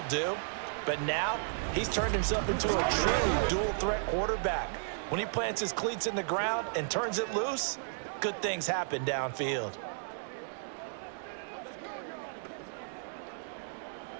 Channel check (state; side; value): silent; left; digital silence